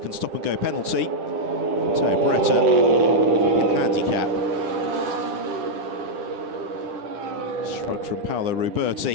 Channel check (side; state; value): left; late; 10 ms